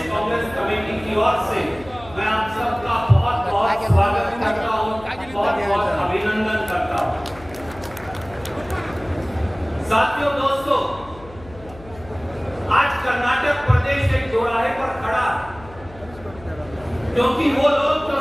साथियों, दोस्तों, आज कर्नाटक प्रदेश एक दोराहे पर खड़ा, क्योंकि वो लोग जो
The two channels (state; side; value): noise; left; hum, 20 dB below the sound